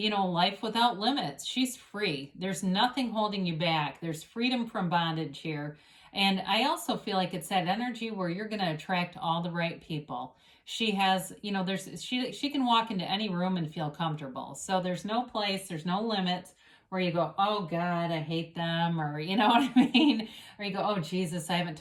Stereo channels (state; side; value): identical; both; correlation 1.00